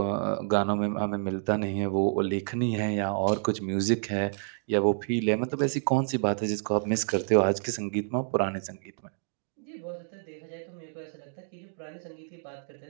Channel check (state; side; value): silent; left; digital silence